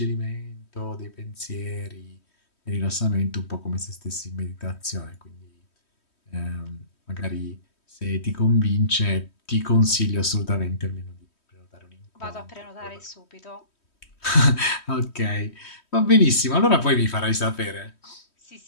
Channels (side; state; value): right; late; 3.1 ms